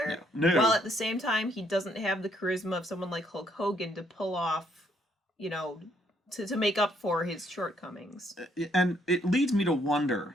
No. While at the same time, he doesn't have the charisma of someone like Hulk Hogan to pull off, to make up for his shortcomings. And it leads me to wonder,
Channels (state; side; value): normal; both; correlation 0.70